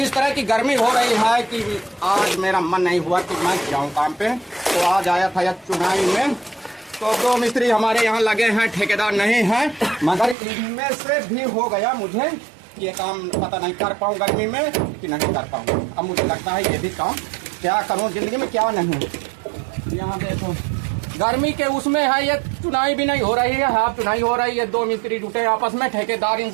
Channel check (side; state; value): left; drops out; at 10.4 s